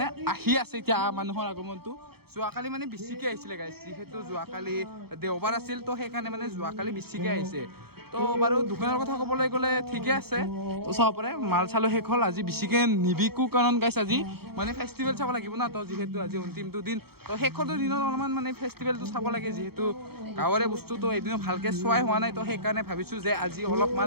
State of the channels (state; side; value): late; left; 0.96 ms